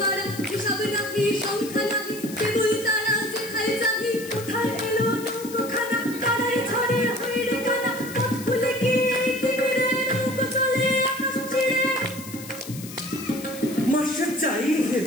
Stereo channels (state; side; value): noise; left; hiss, 14 dB below the sound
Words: হিসাব নাহি সংখ্যা নাহি। কেবল তারা যেথায় যাহি, কোথায় এলো নৌকোখানা। তারাই ঝড়ে হইরে কানা, পথ ভুলে গিয়ে তিমিরে নৌকো চলে আকাশ ছিঁড়ে। মাসে চাই